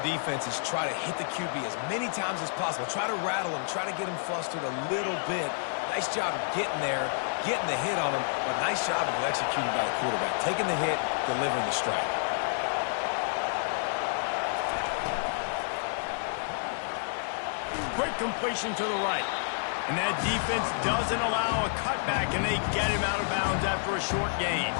defense is try to hit the QB as many times as possible. Try to rattle him, try to get him flustered a little bit. Nice job getting there, getting the hit on him, but nice job of executing by the quarterback. Taking the hit, delivering the strike. Quick completion to the right. And that defense doesn't allow a cutback, and they get him out of bounds after a short gain.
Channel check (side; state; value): right; silent; 58 dB below the other